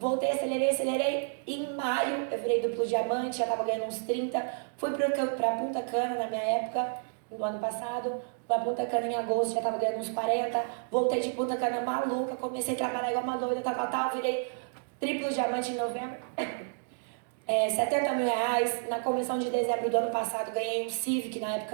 acelerei. E em maio eu virei duplo diamante, já tava ganhando uns 30. Fui pra Punta Cana na minha época, no ano passado. Pra Punta Cana em agosto, já tava ganhando uns 40. Voltei de Punta Cana maluca, comecei a trabalhar igual uma doida, tal. Virei triplo diamante em novembro. 70 mil reais. Na convenção de dezembro do ano passado ganhei um Civic, na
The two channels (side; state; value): left; silent; digital silence